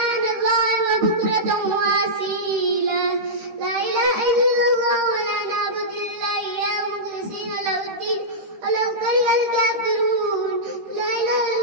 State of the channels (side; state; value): left; late; 13 ms